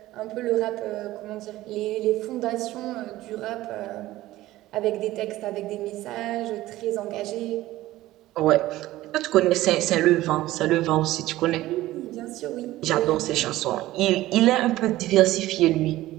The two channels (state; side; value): quieter; left; 16.3 dB